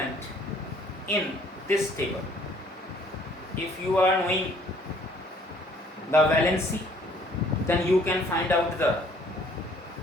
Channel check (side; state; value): both; normal; correlation 0.59